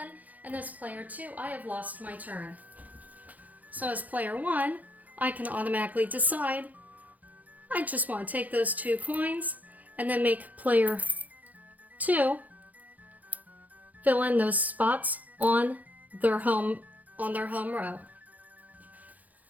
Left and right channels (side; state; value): left; late; 0.079 ms